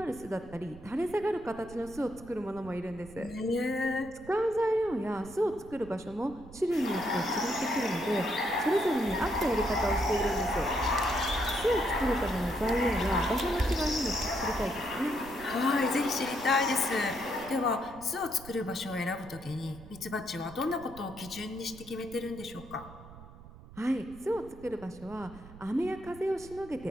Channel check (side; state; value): right; noise; rumble, 18 dB below the sound